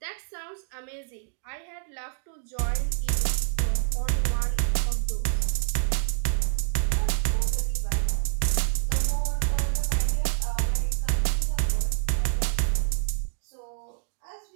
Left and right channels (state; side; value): silent; left; digital silence